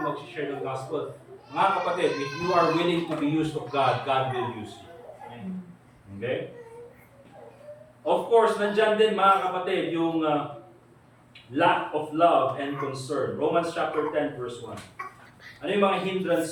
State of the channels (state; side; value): identical; both; correlation 1.00